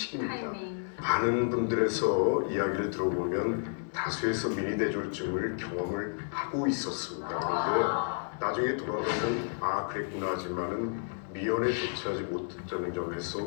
타이밍. 많은 분들에서 이야기를 들어보면 다수에서 미니 뇌졸중을 경험을 하고 있었습니다. 그런데 나중에 돌아보면 그랬구나 하지만은 미연에 도취하지 못했다는 점에서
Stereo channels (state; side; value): silent; right; digital silence